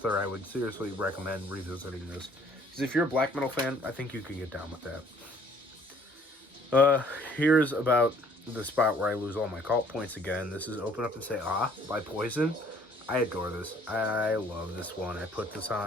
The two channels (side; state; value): both; normal; correlation 0.58